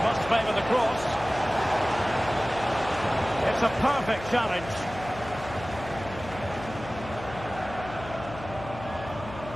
must favour the cross. It's a perfect challenge.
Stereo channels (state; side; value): noise; left; hum, 13 dB below the sound